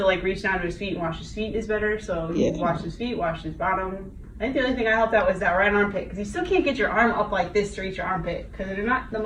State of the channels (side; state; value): both; identical; correlation 1.00